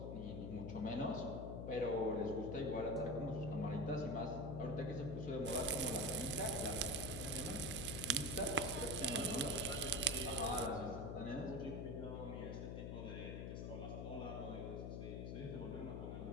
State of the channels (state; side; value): noise; left; hum, 4 dB below the sound